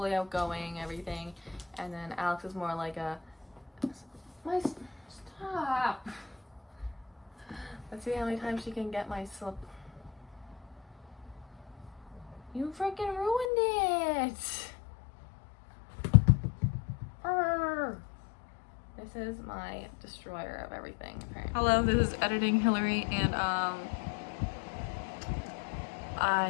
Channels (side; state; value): right; drops out; at 13.5 s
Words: outgoing, everything, and then Alex is more like stop. Let's see how many times she can get my slip. You freaking ruined it! Arr. This is my destroyer of everything, apparently. Hello, this is Editing Hillary, and